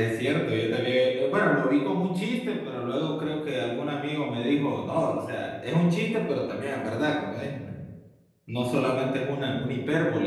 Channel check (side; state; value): both; identical; correlation 1.00